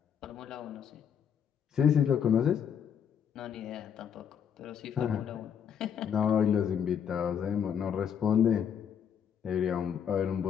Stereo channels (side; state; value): right; quieter; 8.1 dB